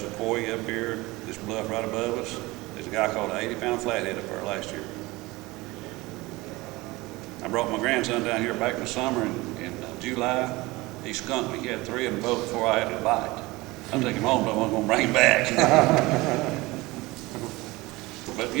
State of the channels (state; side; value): quieter; left; 21.4 dB